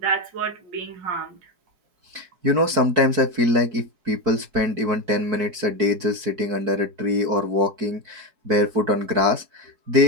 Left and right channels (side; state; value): left; late; 4.6 ms